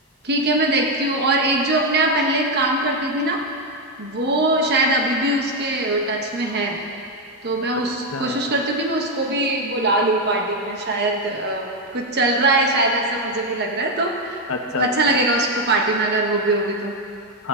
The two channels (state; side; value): normal; both; correlation 0.05